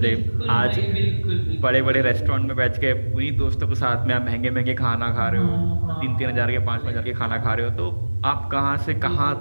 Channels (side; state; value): both; inverted; correlation -1.00